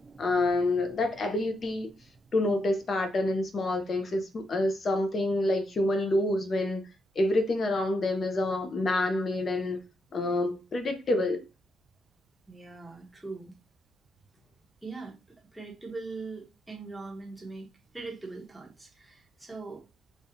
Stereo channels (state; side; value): normal; both; correlation 0.81